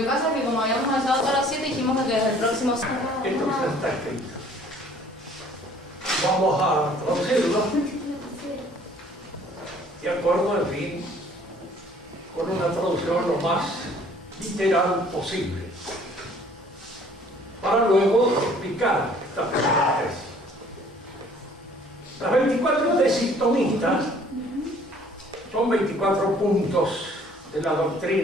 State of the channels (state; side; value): normal; both; correlation 0.56